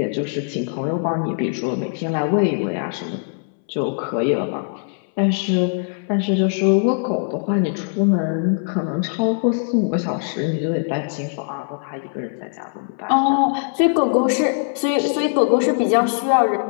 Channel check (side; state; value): right; silent; 65 dB below the other